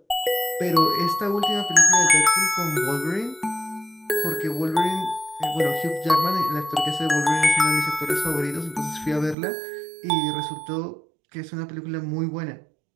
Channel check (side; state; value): left; drops out; at 9.3 s